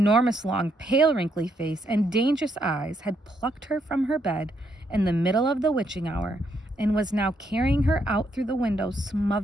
long, pale, wrinkly face and dangerous eyes had plucked her from her bed in the middle of the witching hour and was now carrying her out through the window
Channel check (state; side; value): normal; both; correlation 0.75